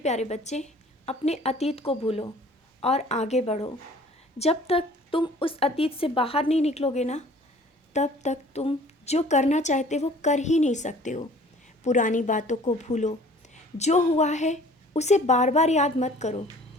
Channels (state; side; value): normal; both; correlation 0.51